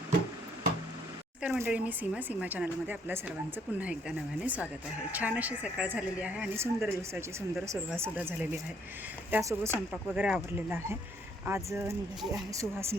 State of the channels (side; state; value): both; normal; correlation 0.67